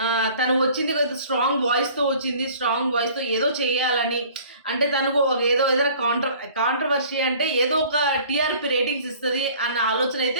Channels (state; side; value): inverted; both; correlation -0.50